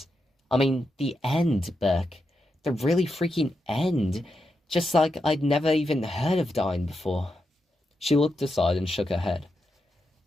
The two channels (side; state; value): both; normal; correlation 0.86